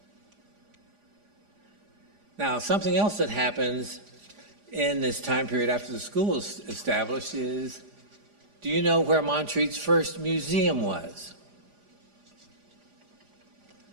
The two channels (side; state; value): left; late; 4.9 ms